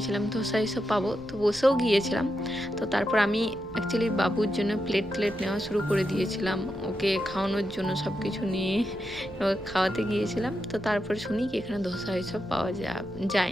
ধোসা এসব পাবো, তো বসেও গিয়েছিলাম। তো তারপর আমি অ্যাকচুয়ালি বাবুর জন্য প্লেট নেওয়া শুরু করে দিয়েছিলাম, ওকে খাওয়ানোর জন্য সব কিছু নিয়ে খাওয়াতে গিয়েছিলাম। তো তারপর শুনি কি এখানে ধোসা এসব পাওয়া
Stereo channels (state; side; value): noise; left; rumble, 19 dB below the sound